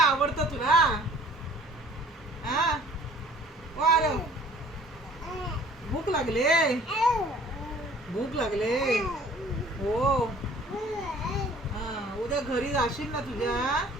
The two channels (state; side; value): normal; both; correlation 0.53